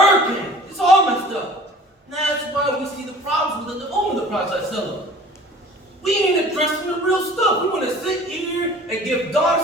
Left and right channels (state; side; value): normal; both; correlation 0.47